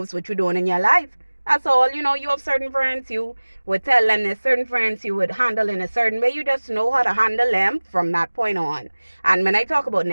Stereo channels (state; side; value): inverted; both; correlation -1.00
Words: what you're doing in your life. That's all. You have certain friends, you would tell them there's certain friends you would handle in a certain way. You just know how to handle them from that point on. And when I talk about